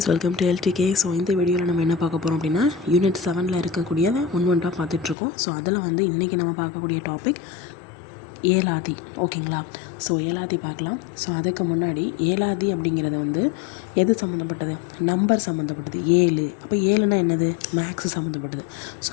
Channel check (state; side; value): drops out; right; at 5.2 s